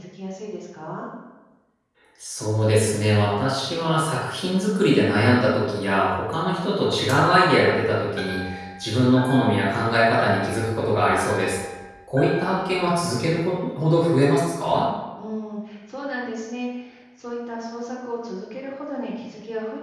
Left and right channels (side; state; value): both; identical; correlation 1.00